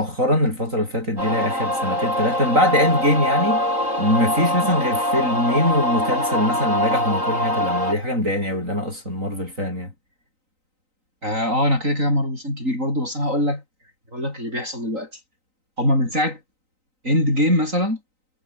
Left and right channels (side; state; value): left; late; 3.9 ms